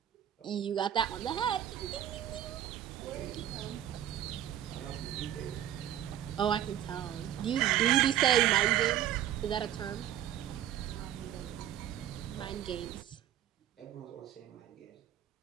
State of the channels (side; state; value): left; quieter; 11.4 dB